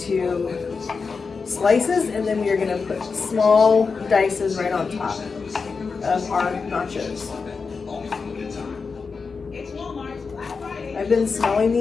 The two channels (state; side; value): quieter; right; 4.9 dB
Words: slices, and then we are gonna put small dices right on top of our nachos. I've been smelling